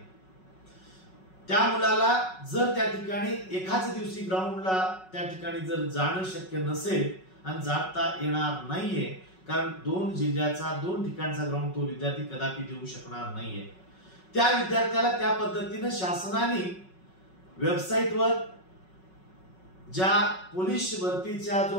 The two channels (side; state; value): right; late; 5.4 ms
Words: त्या मुलाला जर त्या ठिकाणी एकाच दिवशी ग्राउंडला त्या ठिकाणी जर जाणं शक्य नसेल आणि जाता येणार नाहीये, कारण 2 जिल्ह्याचा 2 ठिकाणचा ग्राउंड तो विद्यार्थी कदापि देऊ शकणार नाहीये, त्या विद्यार्थ्याला त्या पद्धतीने शासनाने वेबसाईटवर ज्या पोलीस भरतीचा